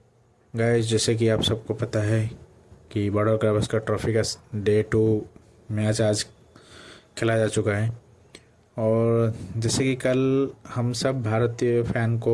Guys, जैसे कि आप सबको पता है कि बॉर्डर गावस्कर ट्रॉफी का डे 2 मैच आज खेला जा चुका है। और जैसे कि कल हम सब भारतीय फैन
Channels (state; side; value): identical; both; correlation 1.00